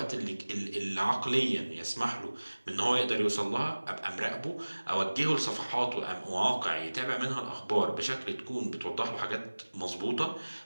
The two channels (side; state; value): both; inverted; correlation -1.00